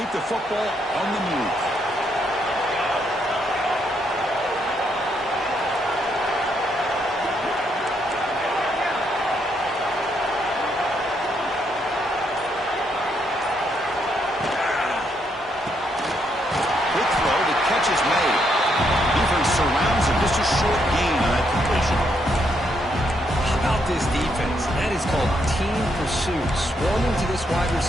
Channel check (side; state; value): both; normal; correlation 0.76